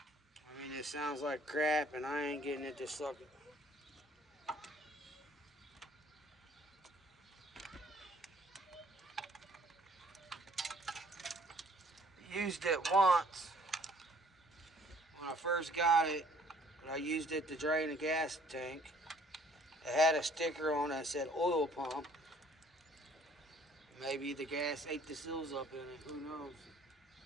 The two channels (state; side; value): normal; both; correlation 0.58